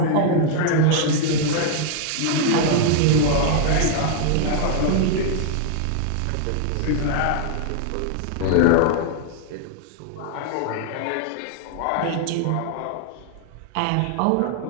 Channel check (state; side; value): different; both; correlation 0.00